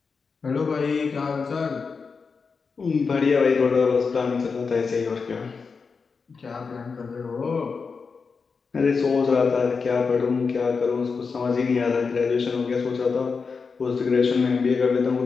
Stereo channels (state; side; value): quieter; right; 5.1 dB